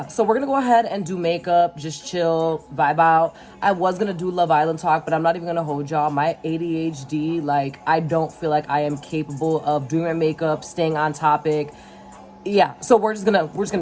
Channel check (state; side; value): identical; both; correlation 1.00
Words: so we're going to go ahead and do makeup, just chill, vibe out. I was going to do Love Island talk, but I'm not even going to hold y'all. My ADHD, like, I don't feel like I am capable of doing my makeup, staying on topic. Yeah, so we're just gonna